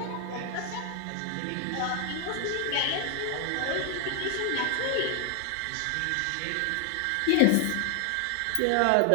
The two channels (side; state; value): both; different; correlation 0.00